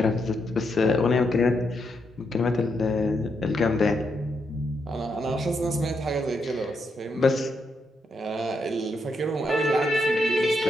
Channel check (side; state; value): both; normal; correlation 0.80